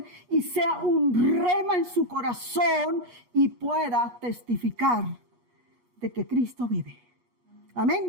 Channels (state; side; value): late; left; 8.3 ms